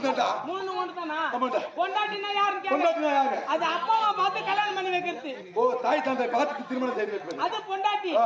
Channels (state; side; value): identical; both; correlation 1.00